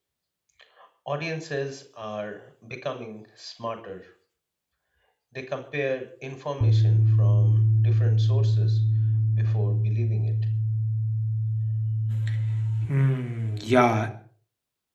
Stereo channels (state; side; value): identical; both; correlation 1.00